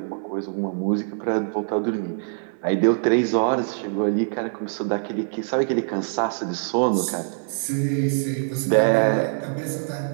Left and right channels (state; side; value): silent; left; 63 dB below the other